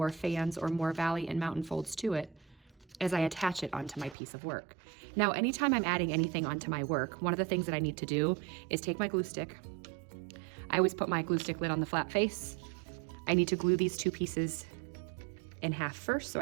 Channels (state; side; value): drops out; left; at 4.2 s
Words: fans or more valley and mountain folds to it as I attach it onto my piece of work. Now, anytime I'm adding anything onto my work, one of the things that I need to do is take my glue stick. I always put my glue stick lid on the flat face. I need to glue these two pieces in half first, so I